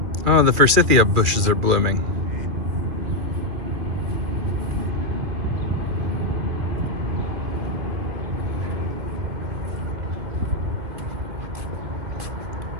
Oh, the forsythia bushes are blooming.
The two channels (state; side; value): late; left; 2.4 ms